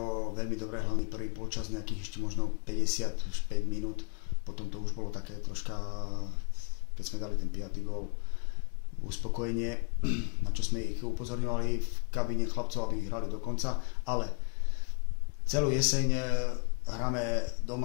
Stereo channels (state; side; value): quieter; right; 38.9 dB